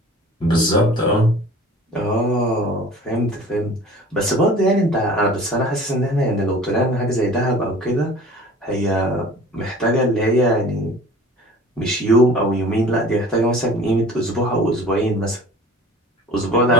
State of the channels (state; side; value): normal; both; correlation 0.45